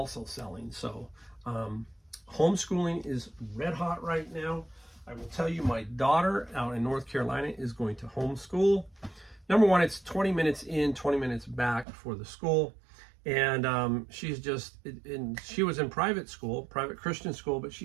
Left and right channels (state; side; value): drops out; left; at 11.9 s